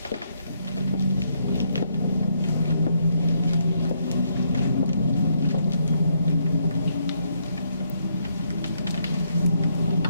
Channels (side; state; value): both; inverted; correlation -0.73